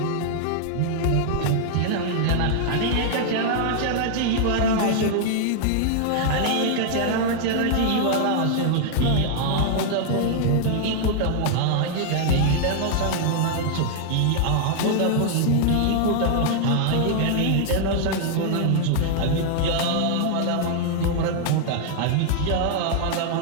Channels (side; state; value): both; different; correlation 0.00